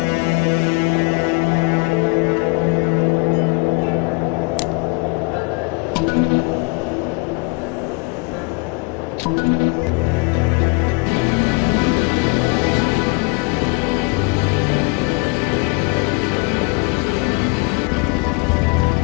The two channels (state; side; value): quieter; right; 29.1 dB